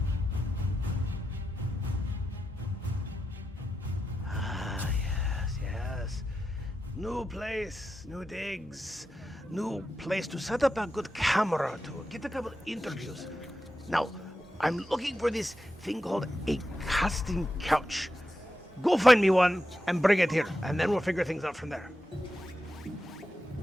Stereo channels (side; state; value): both; normal; correlation 0.89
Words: Yes. New place, new digs, new place to set up a good camera to get a couple interviews. Now, I'm looking for this thing called a casting couch. Go find me one and bring it here, and then we'll figure things out from there.